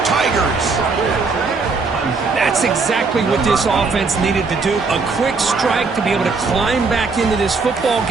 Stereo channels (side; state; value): left; quieter; 4.3 dB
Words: Tigers. That's exactly what this offense needed to do. A quick strike to be able to climb back into this football